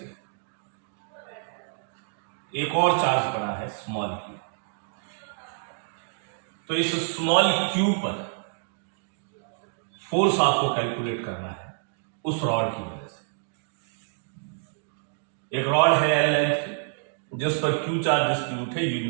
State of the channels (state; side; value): silent; left; digital silence